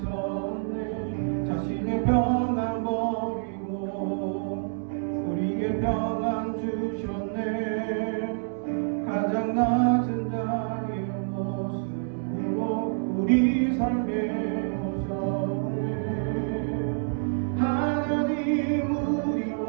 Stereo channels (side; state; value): left; silent; 60 dB below the other